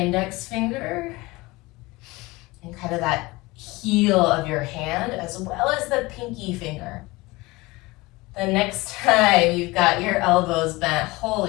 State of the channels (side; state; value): right; quieter; 22.0 dB